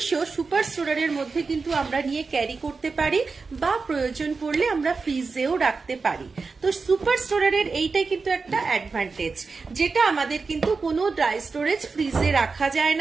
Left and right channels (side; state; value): left; quieter; 4.5 dB